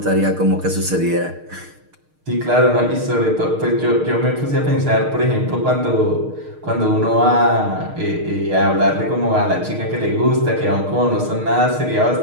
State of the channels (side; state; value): left; late; 6.5 ms